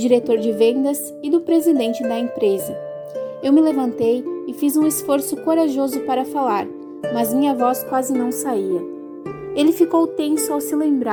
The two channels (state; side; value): identical; both; correlation 1.00